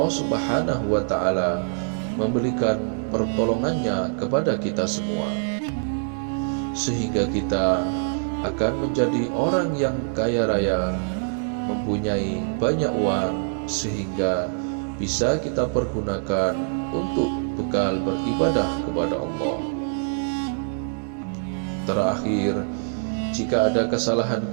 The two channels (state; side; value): silent; left; digital silence